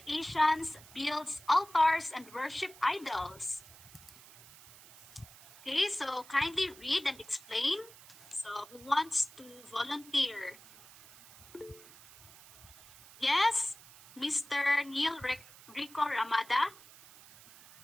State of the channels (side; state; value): right; noise; hiss, 21 dB below the sound